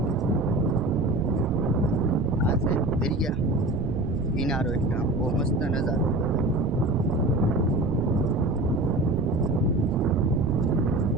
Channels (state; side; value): noise; right; rumble, 6 dB below the sound